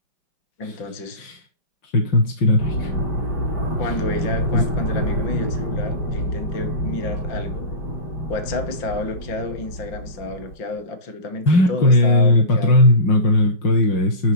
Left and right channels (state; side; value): late; right; 5.8 ms